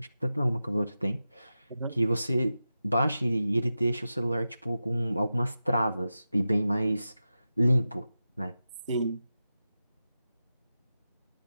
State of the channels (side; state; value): both; inverted; correlation -0.92